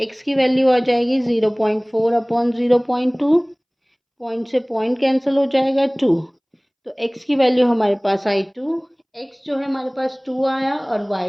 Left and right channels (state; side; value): identical; both; correlation 1.00